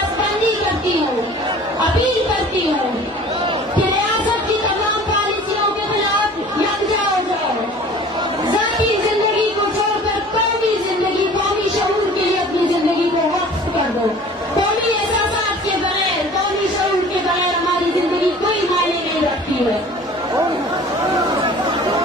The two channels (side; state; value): both; normal; correlation 0.46